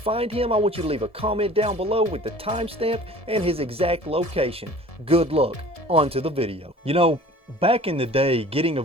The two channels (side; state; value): right; late; 1.7 ms